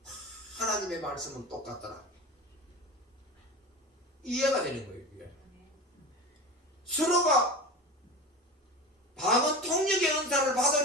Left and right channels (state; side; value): normal; both; correlation 0.30